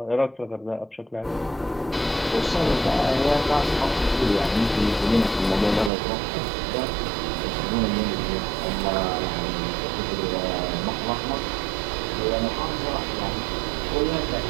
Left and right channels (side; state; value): left; drops out; at 5.9 s